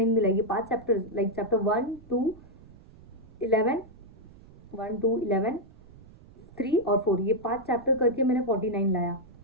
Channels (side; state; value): right; noise; rumble, 22 dB below the sound